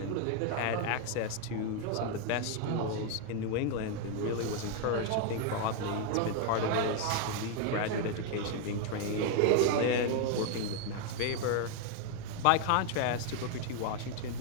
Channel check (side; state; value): both; different; correlation 0.01